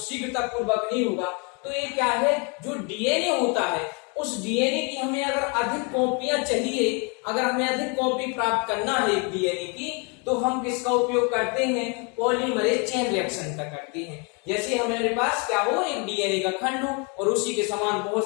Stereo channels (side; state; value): right; quieter; 33.4 dB